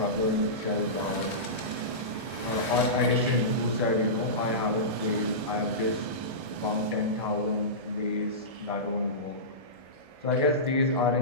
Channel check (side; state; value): left; late; 1.6 ms